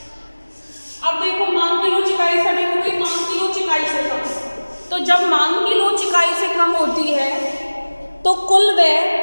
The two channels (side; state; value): both; inverted; correlation -1.00